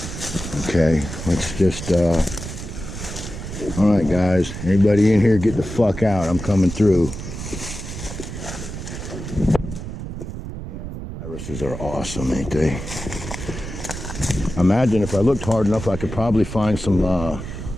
Okay, let's just, all right guys, anybody in here get the fuck out, I'm coming through. Yeah, them irises are awesome, ain't they? Imagine if I looked hard enough, I could probably find some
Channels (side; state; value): right; noise; rumble, 8 dB below the sound